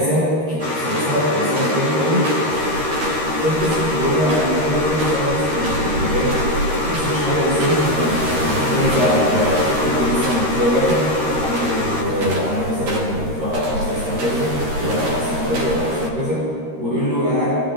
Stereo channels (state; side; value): late; left; 13 ms